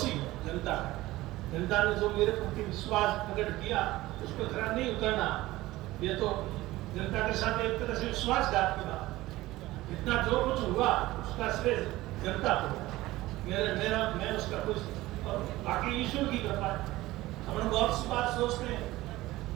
हूँ जनता का। जनता ने जो मेरे प्रति विश्वास प्रकट किया उस पर खरा नहीं उतरना, ये तो जनता के साथ एक तरह से विश्वासघात की बात। इतना जो कुछ हुआ उसका श्रेय जनता को, मैं उसका कुछ, और बाकी ईश्वर की कृपा है। हम लोग बहुत सी बात सोचते हैं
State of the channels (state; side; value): quieter; left; 17.8 dB